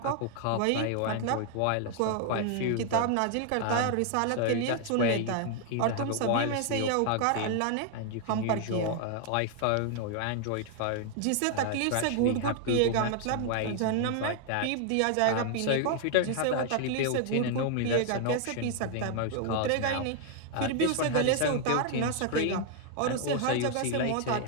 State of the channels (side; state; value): both; different; correlation 0.00